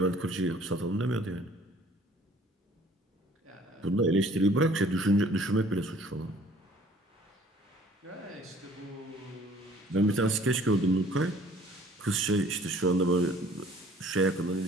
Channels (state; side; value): normal; both; correlation 0.55